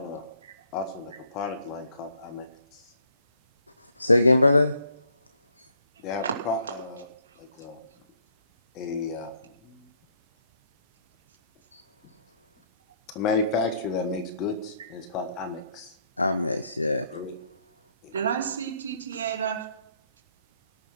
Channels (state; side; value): inverted; both; correlation -0.66